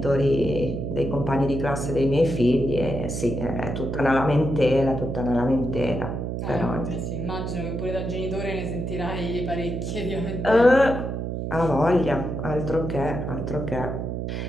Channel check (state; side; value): noise; right; hum, 3 dB below the sound